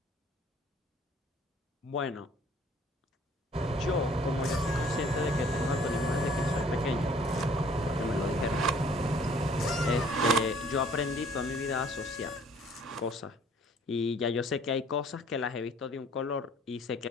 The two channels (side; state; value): both; normal; correlation 0.56